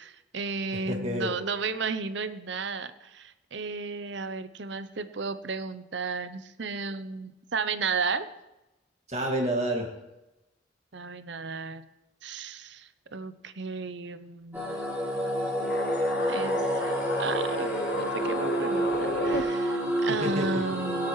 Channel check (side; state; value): both; normal; correlation 0.39